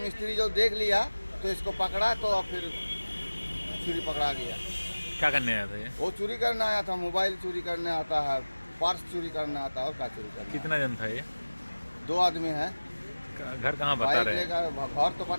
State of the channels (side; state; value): both; inverted; correlation -1.00